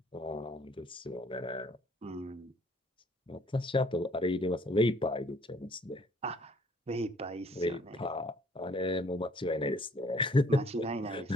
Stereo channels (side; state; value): both; normal; correlation 0.59